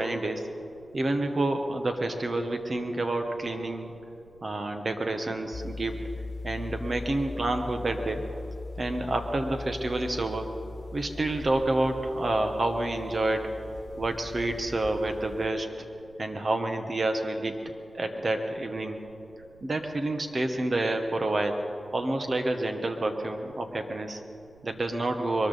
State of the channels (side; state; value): right; noise; rumble, 27 dB below the sound